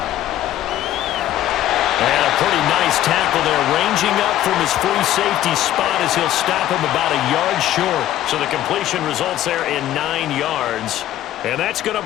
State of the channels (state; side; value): quieter; right; 13.0 dB